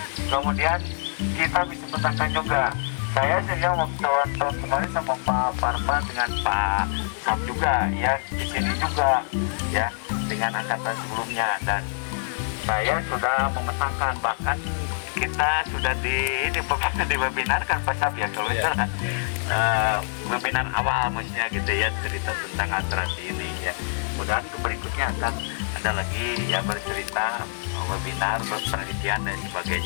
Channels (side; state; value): right; silent; digital silence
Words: Kemudian kita bisa petangkan juga. Saya sehingga tahun kemarin sama Pak Parman dengan Pak Sam juga ya, di sini juga ya, dengan angkatan sebelumnya, dan saya sudah memetakan, bahkan kita sudah di webinar kan Pak Sam ya, kalau itu webinar awal maksudnya gitu ya, cerita tentang atrasi ini ya. Mudah-mudahan berikutnya akan ada lagi ya, bercerita webinar, penelitian dan